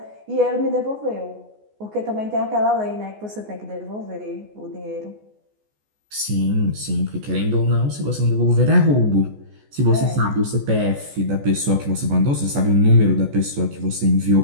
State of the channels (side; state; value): left; late; 14 ms